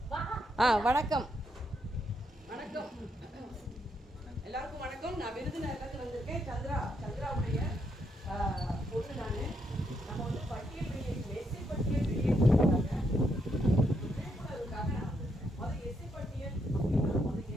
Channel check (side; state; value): both; normal; correlation 0.78